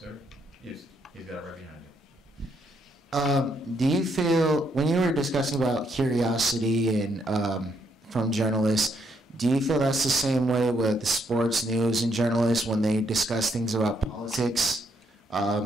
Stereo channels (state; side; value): normal; both; correlation 0.74